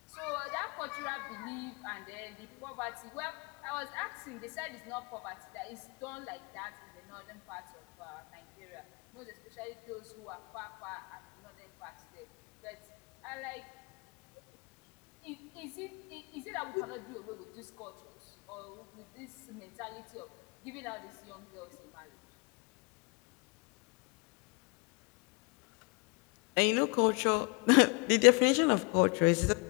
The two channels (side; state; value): right; quieter; 28.6 dB